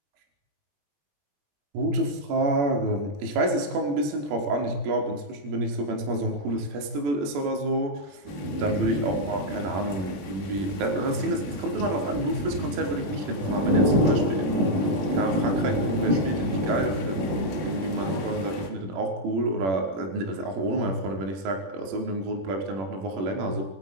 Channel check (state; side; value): late; left; 21 ms